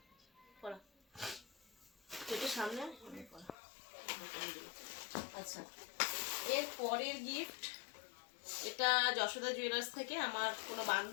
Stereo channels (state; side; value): drops out; right; at 3.6 s